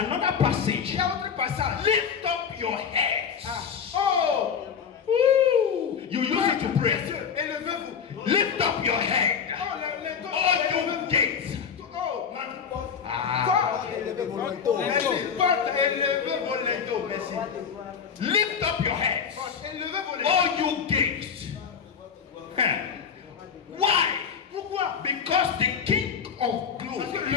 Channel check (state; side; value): quieter; right; 7.0 dB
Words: Il passage. y a autre passage. Lift up your heads. Oh, Ooh, you use it to pray. élevez-vous. Lift up your head. Oh, les All you gates. Oh, man. Ah. Élevez vos linteaux. Élevez vos linteaux. Merci. Lift up your heads. Élevez vos linteaux. All you gates. Why? Pourquoi? Because the King of Parce glory. que